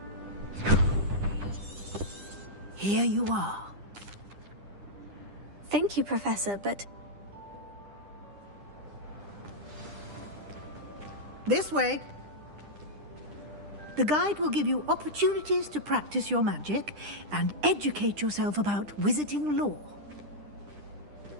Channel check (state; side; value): late; left; 10 ms